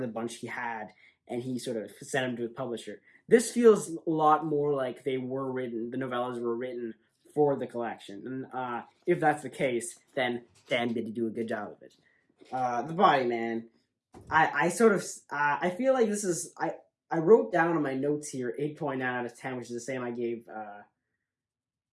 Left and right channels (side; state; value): both; identical; correlation 1.00